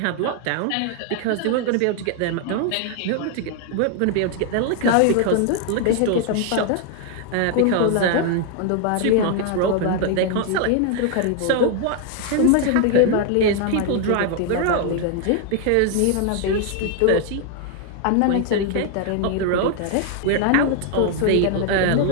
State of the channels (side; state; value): both; different; correlation 0.00